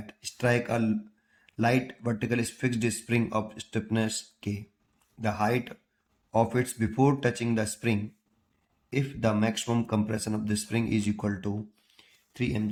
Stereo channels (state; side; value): identical; both; correlation 1.00